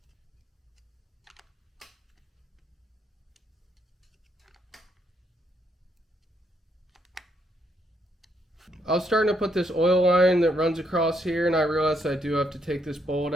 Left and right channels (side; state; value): both; normal; correlation 0.75